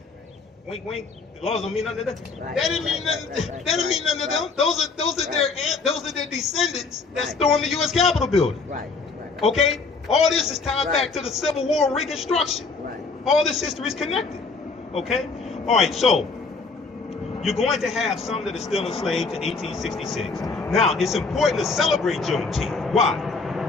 Wink, wink. The laws don't mean nothing to them. Right. That didn't mean nothing. That didn't mean nothing to them. Those are their descendants that stormed the U.S. Capitol building. Right. Okay? All this is tied back to the Civil War, Reconstruction. Right. All this history is connected. Okay? All right. So you're going to have some that are still enslaved to 1866. Now, it's important to celebrate Juneteenth. Why?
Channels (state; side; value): quieter; right; 4.3 dB